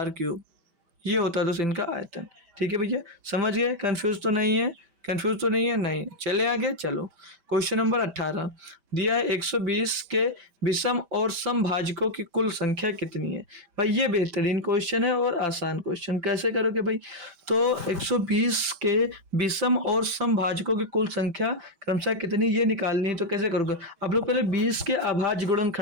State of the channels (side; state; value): left; late; 5.1 ms